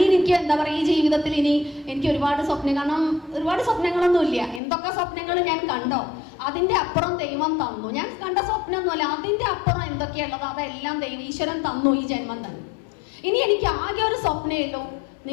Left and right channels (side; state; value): right; drops out; at 4.6 s